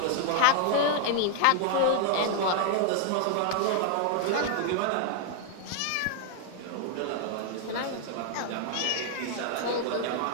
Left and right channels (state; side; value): different; both; correlation 0.00